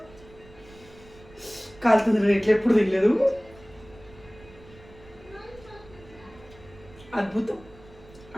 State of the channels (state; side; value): noise; right; rumble, 22 dB below the sound